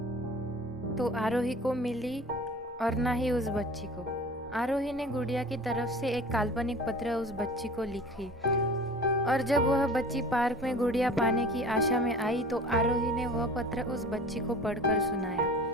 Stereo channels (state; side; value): normal; both; correlation 0.42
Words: तो आरोही को मिली और ना ही उस बच्ची को। आरोही ने गुड़िया की तरफ से एक काल्पनिक पत्र उस बच्ची को लिखी, और जब वह बच्ची पार्क में गुड़िया पाने की आशा में आई तो आरोही ने वह पत्र उस बच्ची को पढ़कर सुनाया।